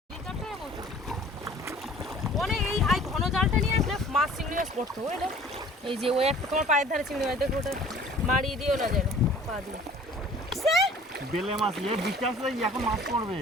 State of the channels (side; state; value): both; normal; correlation 0.50